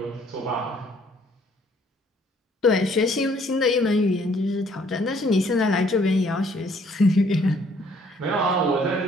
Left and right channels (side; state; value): both; normal; correlation 0.63